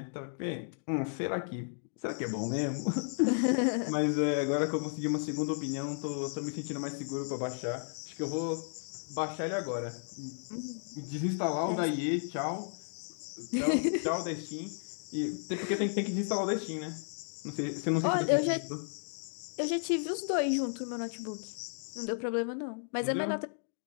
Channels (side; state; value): right; silent; digital silence